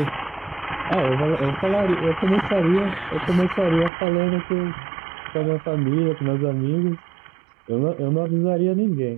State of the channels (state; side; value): drops out; left; at 3.9 s